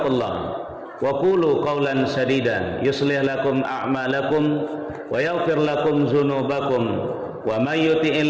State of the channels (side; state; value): both; identical; correlation 1.00